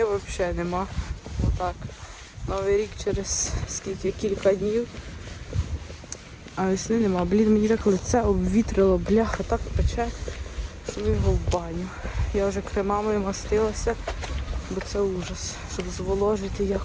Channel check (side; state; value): both; identical; correlation 1.00